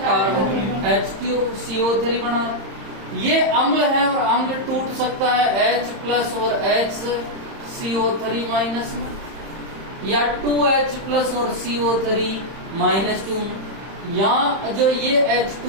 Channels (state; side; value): late; left; 31 ms